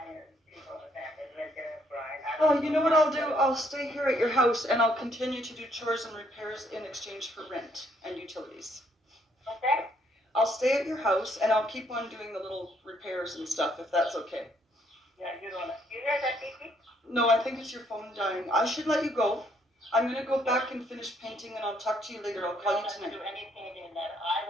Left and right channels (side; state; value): both; normal; correlation 0.69